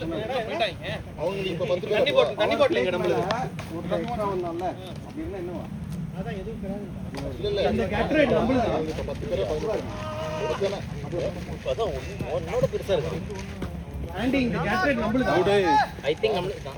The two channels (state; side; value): identical; both; correlation 1.00